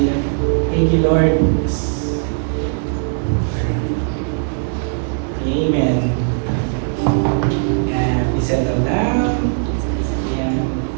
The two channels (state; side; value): silent; left; digital silence